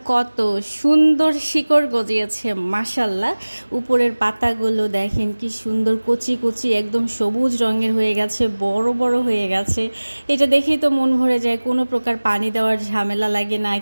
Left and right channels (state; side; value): inverted; both; correlation -1.00